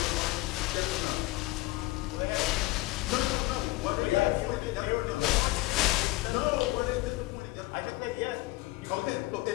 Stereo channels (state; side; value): quieter; right; 19.7 dB